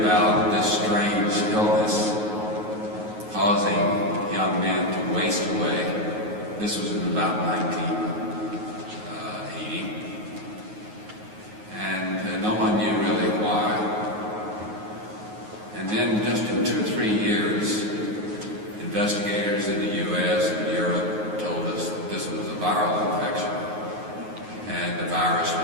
this strange illness causing young men to waste away. This was in about 1980, and no one knew really why. And then just in 2 or 3 years, investigators in the U.S. and Europe told us that this was a viral infection, and the virus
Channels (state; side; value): late; left; 9.4 ms